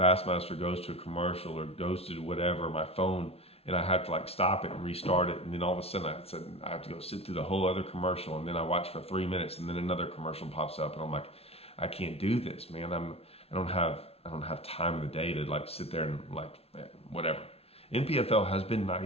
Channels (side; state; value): right; late; 0.29 ms